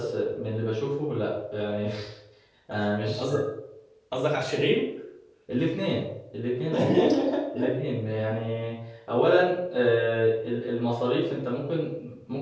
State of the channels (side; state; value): both; identical; correlation 1.00